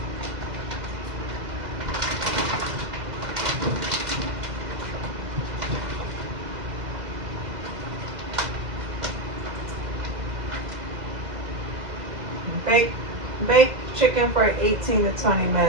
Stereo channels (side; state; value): left; late; 2.1 ms